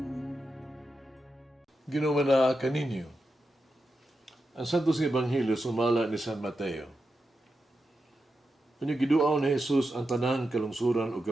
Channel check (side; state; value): both; normal; correlation 0.88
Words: Ginawa na kaninyo. Ang Santos nga Ebanghelyo sumala ni San Mateo. Kanya giduaw ni Jesus ang tanang kalungsuran o